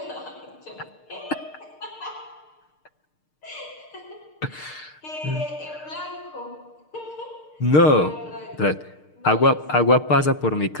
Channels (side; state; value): right; late; 6.6 ms